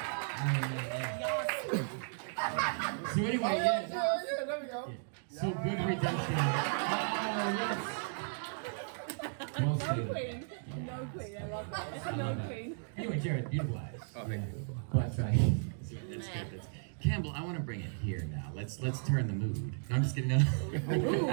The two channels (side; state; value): left; silent; digital silence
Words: So anyway, yeah. There we go. So good redemption. Oh, yes. Well No stated. queen. No queen. I love that. No queen. Anyway, Jared, beautiful eyes. Oh, thank you. Well, that's right. That's good. Campbell, I want to bring it here now. Let's turn the mood. No, I'm just kidding. No. Ooh,